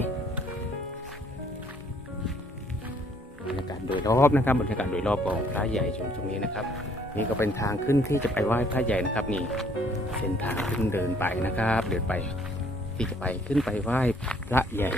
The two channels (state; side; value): normal; both; correlation 0.62